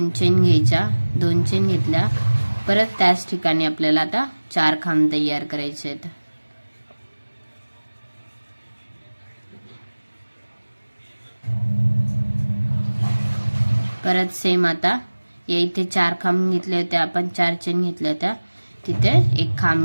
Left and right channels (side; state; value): both; inverted; correlation -1.00